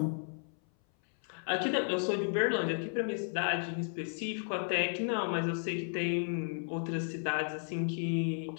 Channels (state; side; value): silent; right; 55 dB below the other